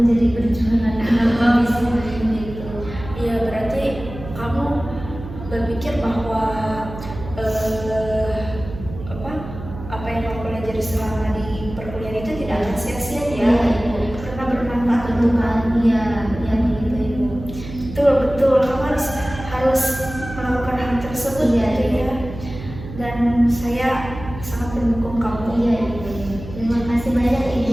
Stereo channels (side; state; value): right; noise; hum, 11 dB below the sound